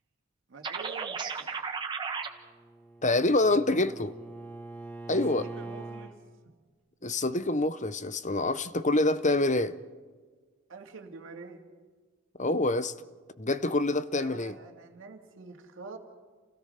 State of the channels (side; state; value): both; normal; correlation 0.27